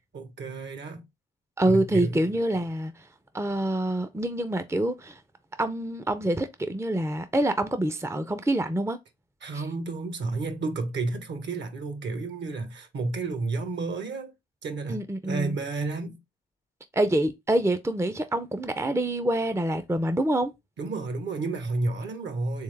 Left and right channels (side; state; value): both; normal; correlation 0.82